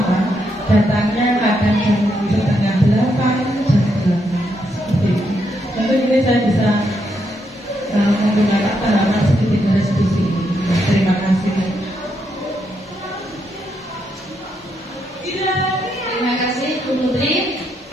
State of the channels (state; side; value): normal; both; correlation 0.79